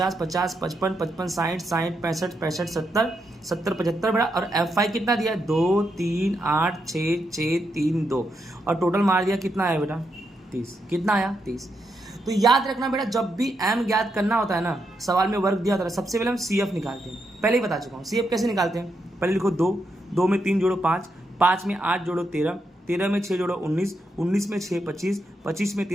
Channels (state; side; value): normal; both; correlation 0.82